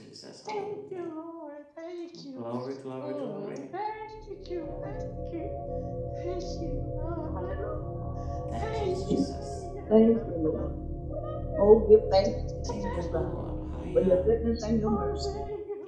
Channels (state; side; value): identical; both; correlation 1.00